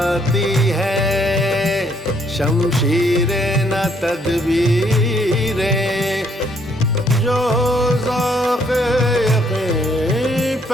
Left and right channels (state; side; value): normal; both; correlation 0.68